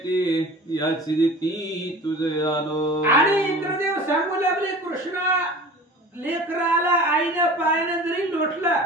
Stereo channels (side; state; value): both; normal; correlation 0.40